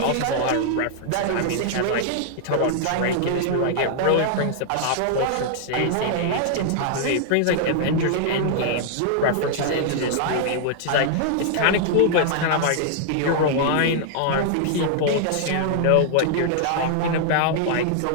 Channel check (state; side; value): different; both; correlation -0.01